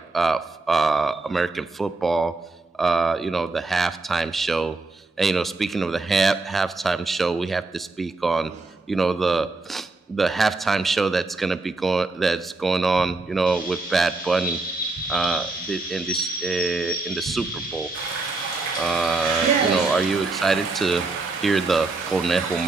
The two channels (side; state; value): left; quieter; 3.5 dB